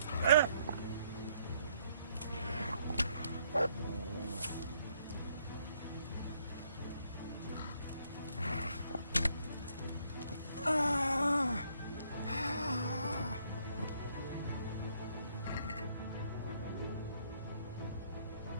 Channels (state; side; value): inverted; both; correlation -0.68